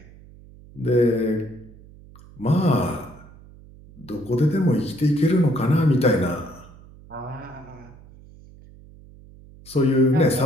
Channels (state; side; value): noise; right; hum, 22 dB below the sound